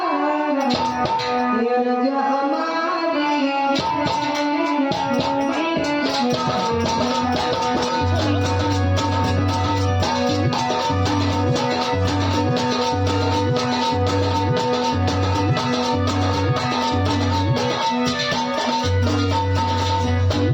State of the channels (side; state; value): both; identical; correlation 1.00